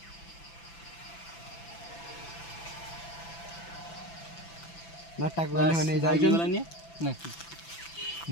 नाटक होने जाइगला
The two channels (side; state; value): right; late; 5.9 ms